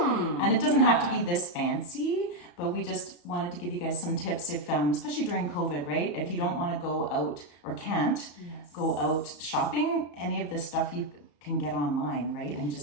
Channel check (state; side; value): late; right; 34 ms